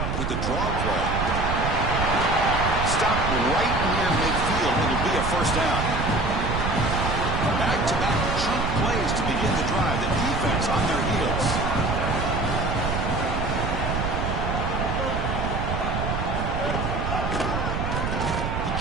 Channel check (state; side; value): noise; right; rumble, 1 dB below the sound